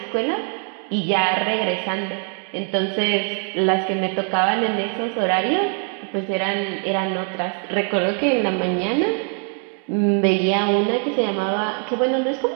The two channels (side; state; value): left; quieter; 39.6 dB